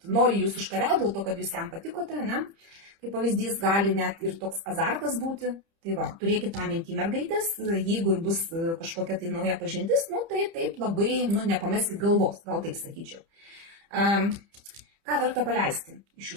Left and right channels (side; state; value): left; late; 30 ms